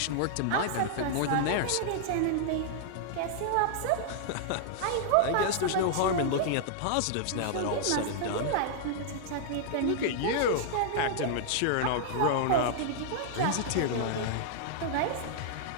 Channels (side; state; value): both; different; correlation -0.01